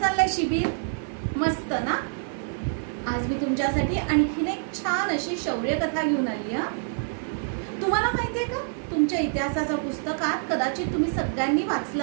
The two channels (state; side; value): silent; left; digital silence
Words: चाललंय शिबिर? मस्त ना? आज मी तुमच्यासाठी आणखीन एक छान अशी शौर्य कथा घेऊन आली आहे। तुम्हाला माहितीये का, तुमच्या इतिहासाच्या पुस्तकात कदाचित तुम्ही सगळ्यांनी